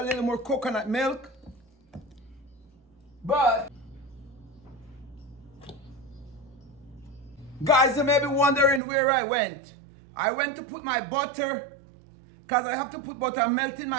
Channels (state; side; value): drops out; left; at 8.8 s